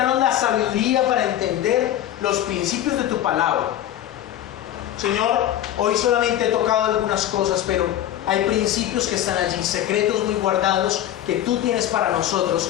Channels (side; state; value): right; quieter; 12.2 dB